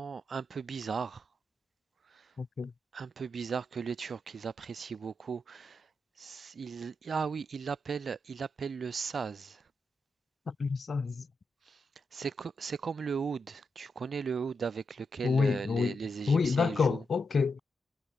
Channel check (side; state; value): both; normal; correlation 0.84